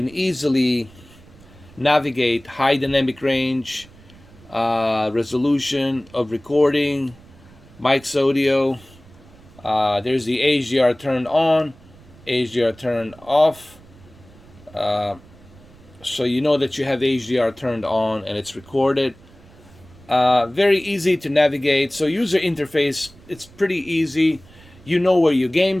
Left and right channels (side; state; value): right; noise; rumble, 24 dB below the sound